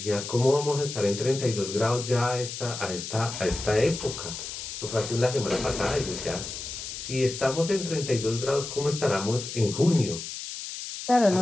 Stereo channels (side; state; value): left; noise; hiss, 8 dB below the sound